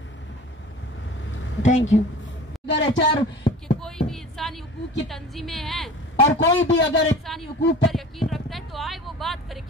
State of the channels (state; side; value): normal; both; correlation 0.40